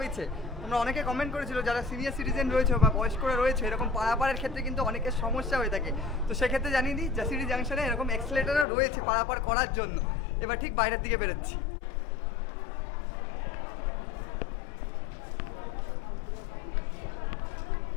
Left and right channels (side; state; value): right; drops out; at 8.7 s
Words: তোমরা অনেকে কমেন্ট করেছিল যারা সিনিয়র সিটিজেন রয়েছে বা বয়স্করা রয়েছে, এরকম পারাপারের ক্ষেত্রে কিন্তু অনেকের সমস্যা হয়ে থাকে। তো সেক্ষেত্রে জানিয়ে দিই জাসিডি জাংশনে এরকম এক্সেলেটরও রয়েছে পারাপার করার জন্য। এবার ঠিক বাইরের দিকে বেরোচ্ছি।